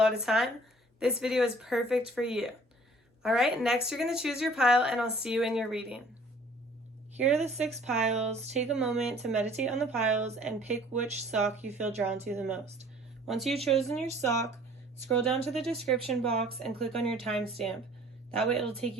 of time, this video is perfect for you. Alright, next you're going to choose your pile and I'll see you in your reading. Here are the 6 piles. Take a moment to meditate on the piles and pick which sock you feel drawn to the most. Once you've chosen your sock, scroll down to the description box and click on your timestamp. That way it'll take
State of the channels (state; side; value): normal; both; correlation 0.53